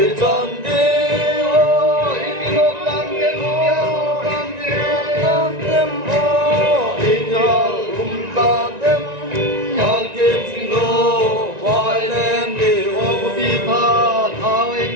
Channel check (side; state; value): left; late; 1.9 ms